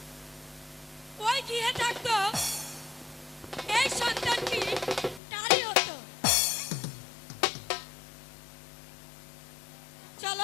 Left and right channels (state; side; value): drops out; right; at 5.2 s